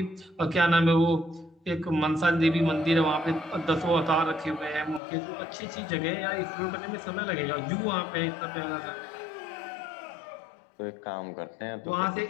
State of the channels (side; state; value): right; drops out; at 5.0 s